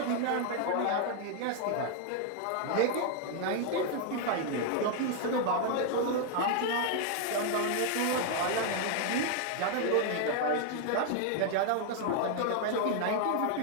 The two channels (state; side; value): different; both; correlation 0.00